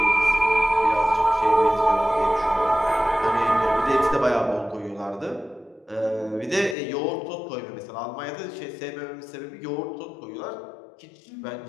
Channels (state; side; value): drops out; right; at 6.8 s